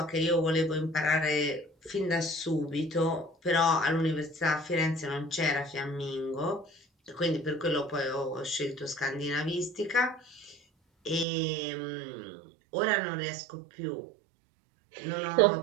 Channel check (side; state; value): left; drops out; at 11.2 s